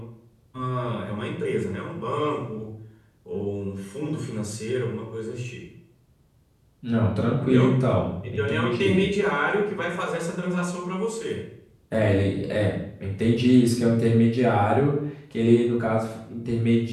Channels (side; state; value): both; identical; correlation 1.00